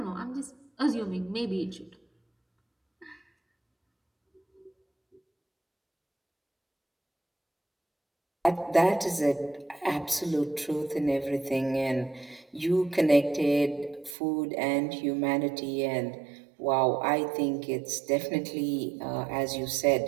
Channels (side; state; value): left; drops out; at 14.2 s